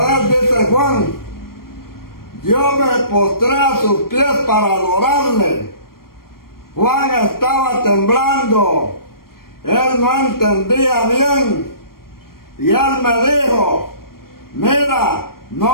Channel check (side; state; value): right; late; 0.93 ms